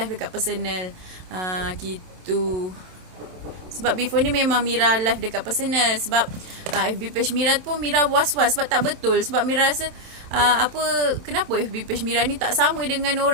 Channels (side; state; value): left; late; 27 ms